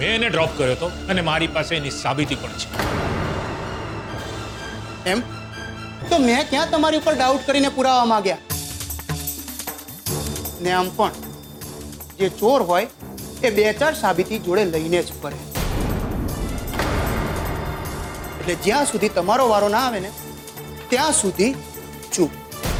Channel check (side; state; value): both; identical; correlation 1.00